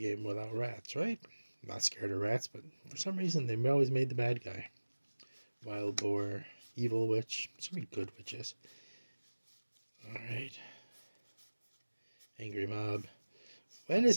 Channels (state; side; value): inverted; both; correlation -1.00